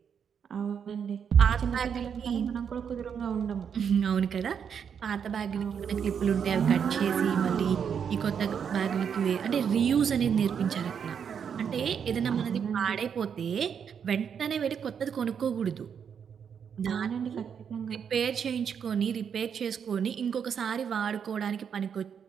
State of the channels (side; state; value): left; quieter; 7.4 dB